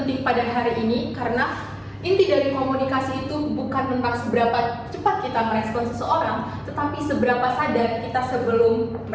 pada hari ini, karena inti dari komunikasi itu bukan tentang seberapa cepat kita merespon seseorang, tetapi seberapa sadar kita sebelum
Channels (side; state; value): both; identical; correlation 1.00